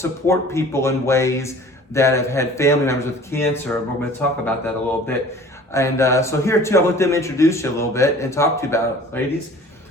people in ways that have had family members with cancer. We're going to talk about that a little bit. And so here too, I'll let them introduce you a little bit and talk to you about it. Ladies,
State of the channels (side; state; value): both; normal; correlation 0.47